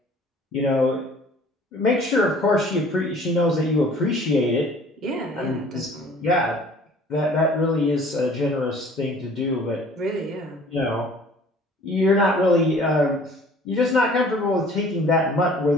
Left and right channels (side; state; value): both; normal; correlation 0.51